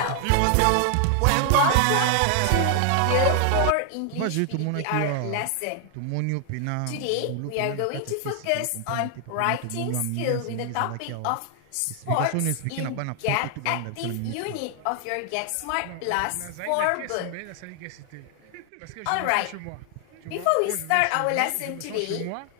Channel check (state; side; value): different; both; correlation 0.00